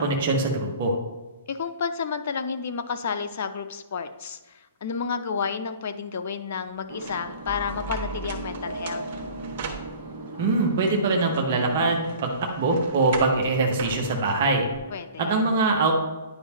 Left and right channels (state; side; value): inverted; both; correlation -0.42